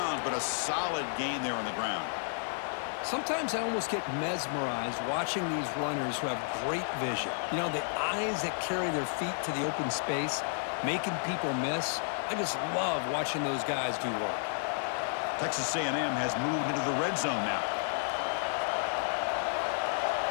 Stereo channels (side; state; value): right; silent; digital silence